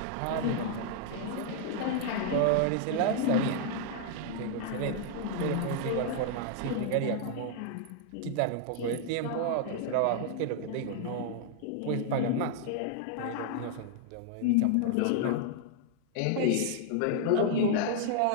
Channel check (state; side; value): different; both; correlation -0.01